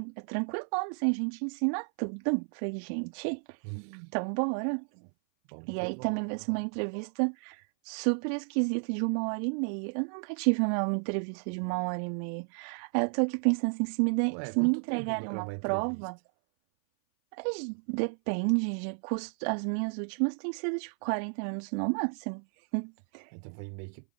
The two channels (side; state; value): left; silent; 57 dB below the other